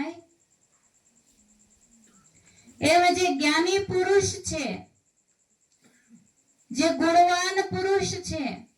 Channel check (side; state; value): both; identical; correlation 1.00